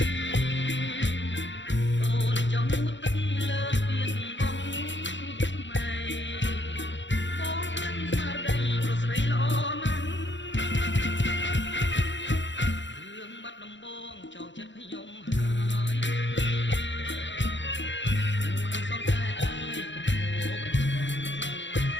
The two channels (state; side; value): late; right; 0.54 ms